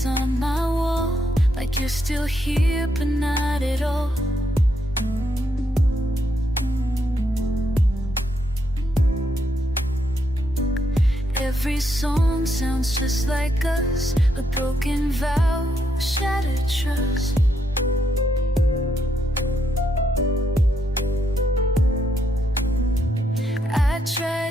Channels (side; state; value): both; normal; correlation 0.78